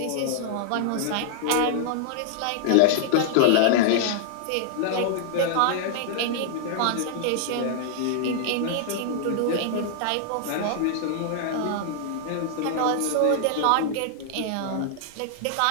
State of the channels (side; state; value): both; different; correlation -0.01